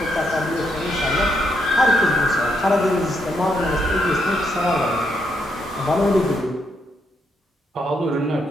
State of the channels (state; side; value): normal; both; correlation 0.77